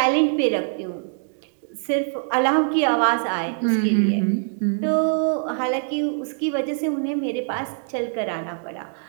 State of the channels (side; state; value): left; silent; 63 dB below the other